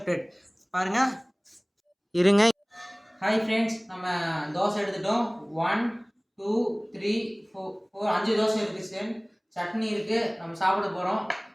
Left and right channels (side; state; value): both; identical; correlation 1.00